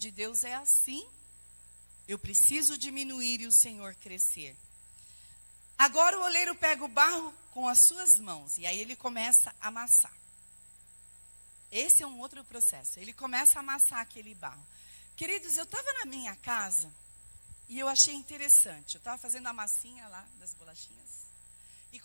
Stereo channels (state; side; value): inverted; both; correlation -1.00